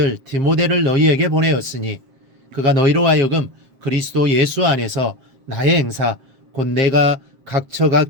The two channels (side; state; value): left; late; 7.5 ms